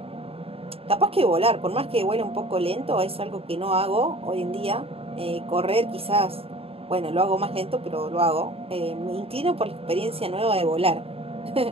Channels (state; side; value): late; left; 0.28 ms